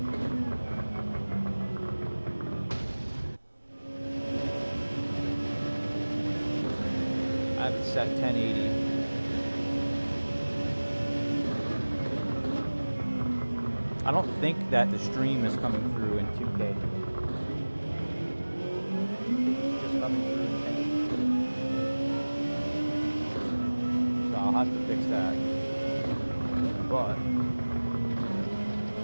I have it set 1080. I don't think that the stream is coming through in 2K. It's just coming through in 1080. So I'll have to fix that. But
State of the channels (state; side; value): inverted; both; correlation -1.00